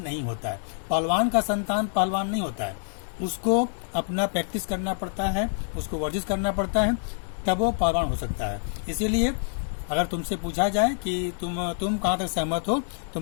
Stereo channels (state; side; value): silent; right; digital silence